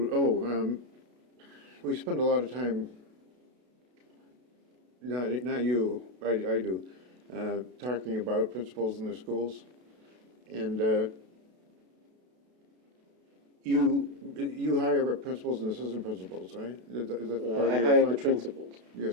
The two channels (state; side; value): late; left; 32 ms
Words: We spend a lot of time. Not you. I do. Talking about principals in the schools, and you hire principals and assistant principals, right? Is that part of your I hire function? the principals.